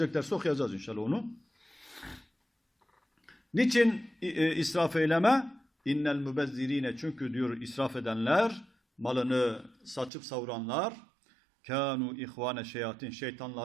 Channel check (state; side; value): drops out; left; at 10.1 s